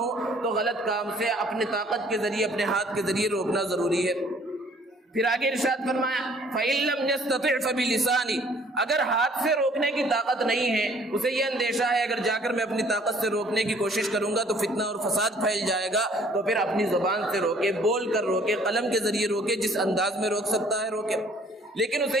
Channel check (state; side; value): normal; both; correlation 0.58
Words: تو غلط کام سے اپنے طاقت کے ذریعے، اپنے ہاتھ کے ذریعے روکنا ضروری ہے۔ پھر آگے ارشاد فرمایا فَإِن لَّمْ يَسْتَطِعْ فَبِلِسَانِهِ، اگر ہاتھ سے روکنے کی طاقت نہیں ہے، اسے یہ اندیشہ ہے اگر جا کر میں اپنی طاقت سے روکنے کی کوشش کروں گا تو فتنہ اور فساد پھیل جائے گا، تو پھر اپنی زبان سے روکے، بول کر روکے، قلم کے ذریعے روکے، جس انداز میں روک سکتا ہے روکے۔ لیکن اسے